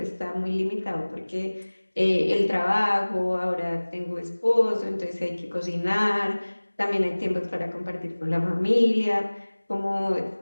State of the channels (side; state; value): both; inverted; correlation -1.00